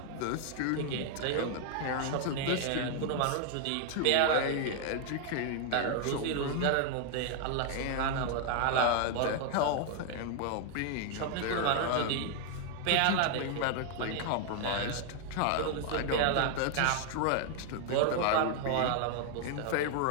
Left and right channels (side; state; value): both; different; correlation 0.00